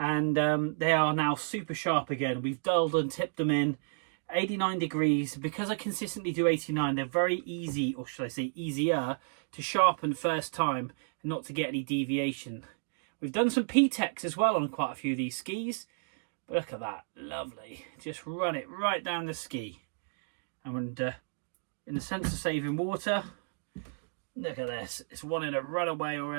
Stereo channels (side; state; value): left; silent; digital silence